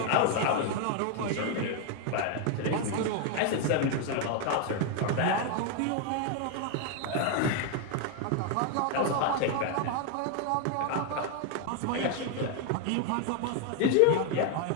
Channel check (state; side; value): different; both; correlation 0.01